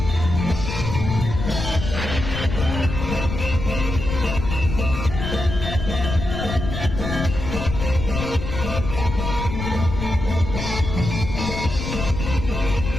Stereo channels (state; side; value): noise; left; rumble, 5 dB below the sound